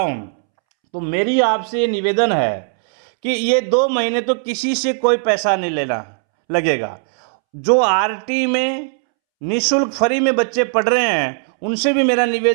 हूँ। तो मेरी आपसे निवेदन है कि ये 2 महीने तो किसी से कोई पैसा नहीं लेना लगेगा। जो आरटी में निःशुल्क फ्री में बच्चे पढ़ रहे हैं उनसे भी मेरा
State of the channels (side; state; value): left; silent; 67 dB below the other